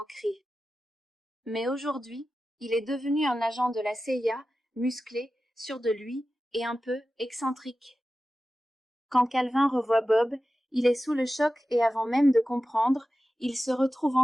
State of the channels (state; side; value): normal; both; correlation 0.94